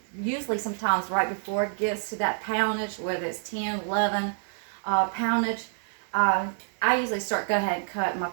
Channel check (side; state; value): left; silent; 60 dB below the other